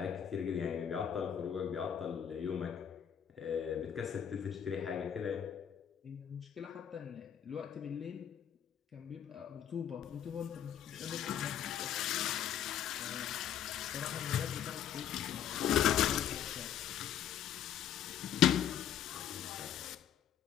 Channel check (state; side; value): quieter; right; 9.4 dB